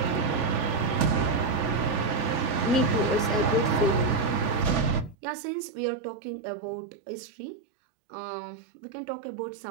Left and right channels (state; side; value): drops out; left; at 5.2 s